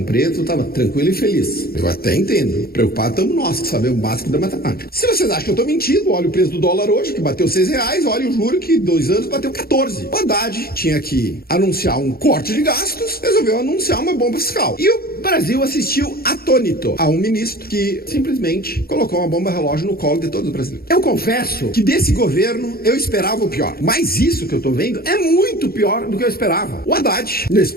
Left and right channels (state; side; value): late; right; 0.44 ms